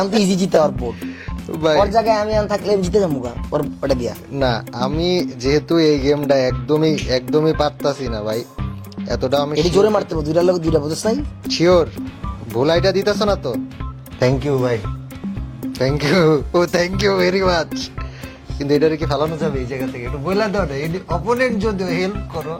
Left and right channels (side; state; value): both; identical; correlation 1.00